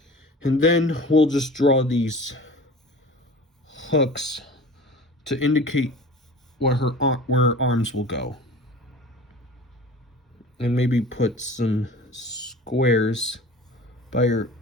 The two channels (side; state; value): both; normal; correlation 0.40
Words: And then we'll just draw these hooks to indicate where her arms will go. And maybe put some squares by her